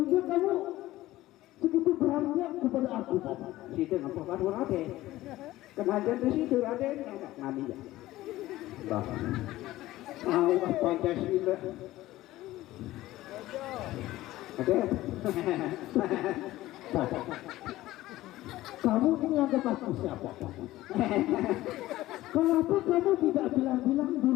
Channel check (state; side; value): quieter; right; 16.3 dB